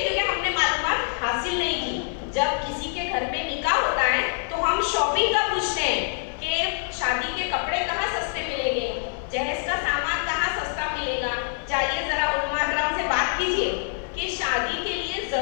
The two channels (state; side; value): silent; right; 55 dB below the other